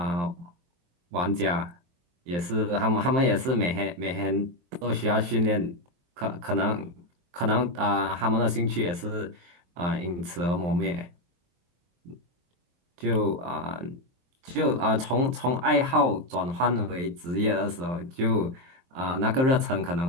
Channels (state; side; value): late; left; 23 ms